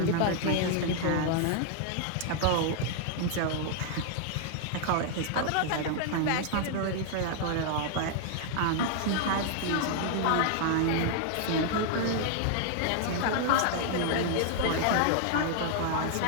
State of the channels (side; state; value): both; different; correlation -0.01